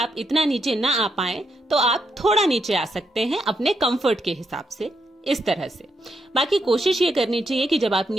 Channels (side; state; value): both; normal; correlation 0.80